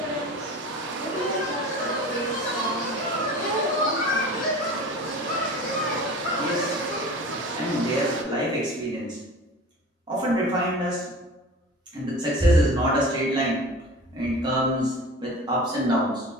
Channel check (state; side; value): normal; both; correlation 0.37